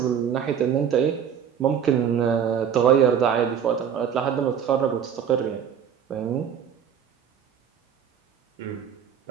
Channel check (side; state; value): left; quieter; 8.2 dB